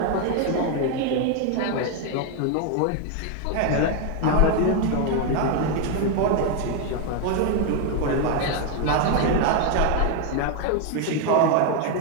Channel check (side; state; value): both; different; correlation 0.01